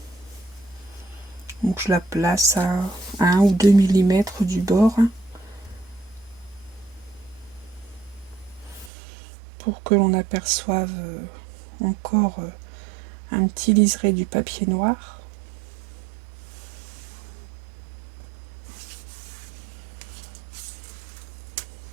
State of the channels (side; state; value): left; drops out; at 8.9 s